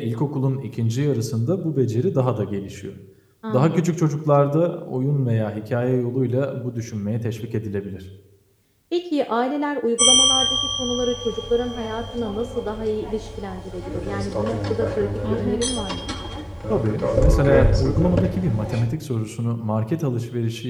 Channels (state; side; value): identical; both; correlation 1.00